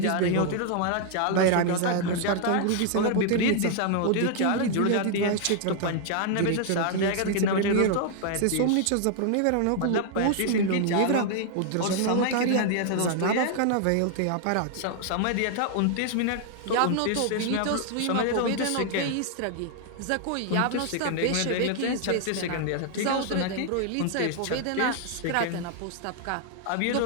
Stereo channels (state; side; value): different; both; correlation 0.00